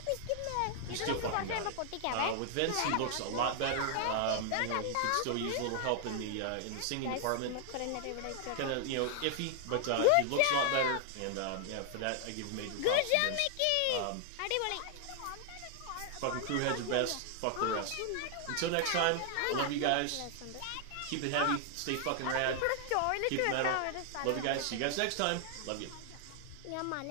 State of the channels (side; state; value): both; different; correlation 0.00